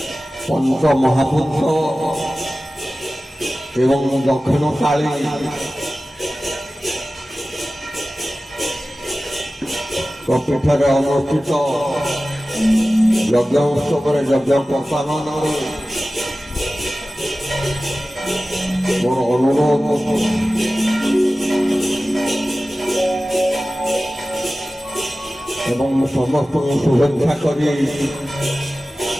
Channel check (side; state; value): both; normal; correlation 0.96